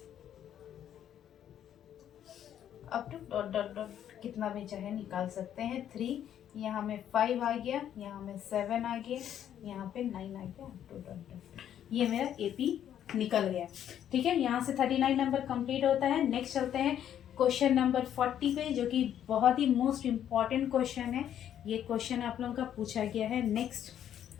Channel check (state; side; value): quieter; right; 10.2 dB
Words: up to dot dot dot, कितना भी चाहे निकाल सकते हैं। 3 यहाँ में 5 आ गया, यहाँ में 7 आ गया, यहाँ पे 9 आ गया, अप टू डॉट डॉट, ये मेरा AP निकल गया। ठीक है, यहाँ से 39 नंबर कंप्लीट होता है। नेक्स्ट चलते हैं क्वेश्चन नंबर 40 पे, जो कि बहुत ही मोस्ट इम्पॉर्टेंट क्वेश्चन है। ये क्वेश्चन आप लोगों का पूछा गया है। नेक्स्ट